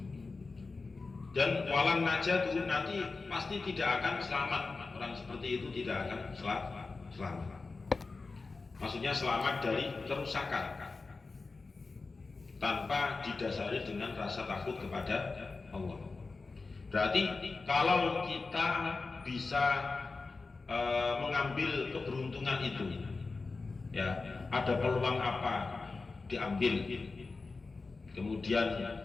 Dan walan najat itu nanti pasti tidak akan selamat. Orang seperti itu tidak akan selamat. Maksudnya selamat dari kerusakan tanpa didasari dengan rasa takut kepada Allah. Berarti kalau kita bisa mengambil keberuntungan itu, ya ada peluang apa diambil, kemudian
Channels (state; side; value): quieter; right; 4.0 dB